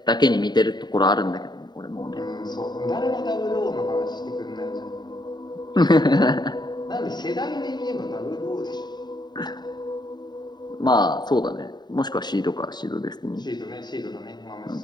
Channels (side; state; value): right; late; 0.21 ms